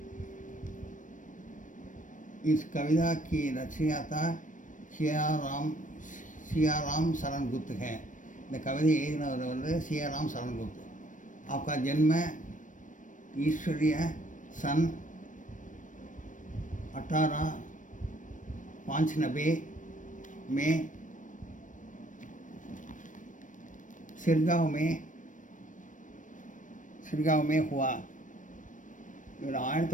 इस कविता की रचयिता सियाराम शरण गुप्त है. இந்த கவிதை எழுதினவர் வந்து सियाराम शरण गुप्त. आपका जन्म ईश्वरीय सन 1895 में सिरगांव में हुआ. இவர்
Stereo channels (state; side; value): late; right; 0.37 ms